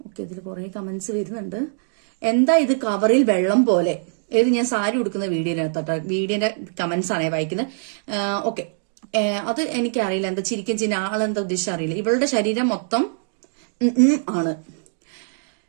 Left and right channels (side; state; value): left; silent; digital silence